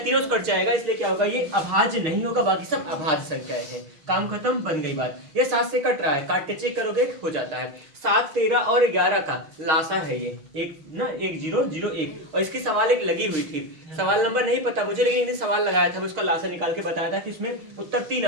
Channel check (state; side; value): late; left; 6.4 ms